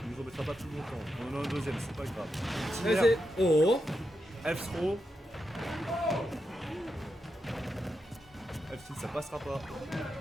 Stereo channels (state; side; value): normal; both; correlation 0.86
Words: nous embêtera pas tout longtemps. On en a un deuxième, c'est pas grave. Vas-y. Oh. F-throw. F-tilt, ça passera pas.